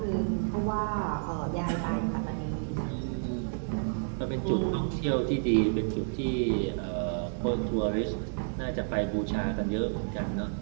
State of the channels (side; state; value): left; silent; digital silence